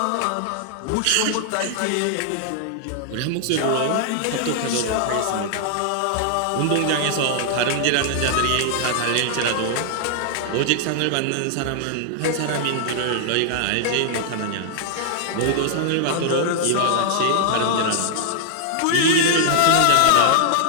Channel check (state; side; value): different; both; correlation -0.01